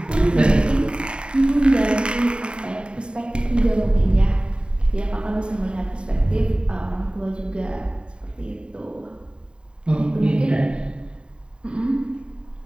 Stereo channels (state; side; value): late; left; 0.051 ms